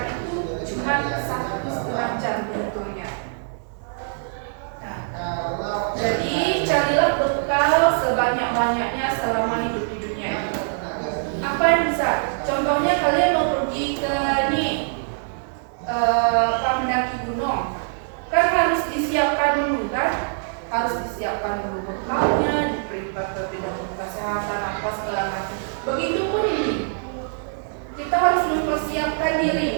itu cuma 1,5 jam dihitungnya. Nah, jadi carilah bekal sebanyak-banyaknya selama hidup di dunia ini. Apa yang bisa? Contohnya kalian mau pergi ke mendaki gunung, kan harus disiapkan dulu kan? Harus disiapkan dulu bekalnya, diperiksa kesehatan apa segala macam. Begitupun ini, kita harus mempersiapkan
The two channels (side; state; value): left; silent; digital silence